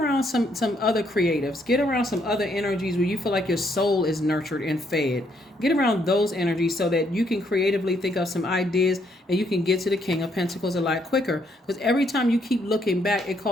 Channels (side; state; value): both; normal; correlation 0.72